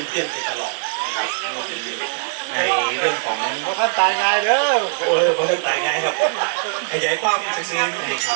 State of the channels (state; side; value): silent; left; digital silence